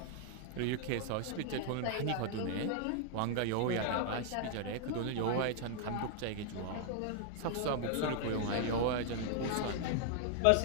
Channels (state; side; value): different; both; correlation -0.01